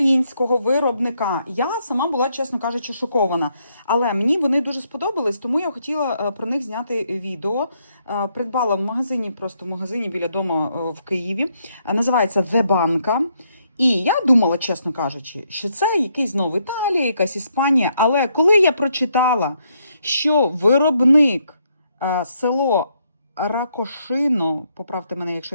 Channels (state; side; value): inverted; both; correlation -0.75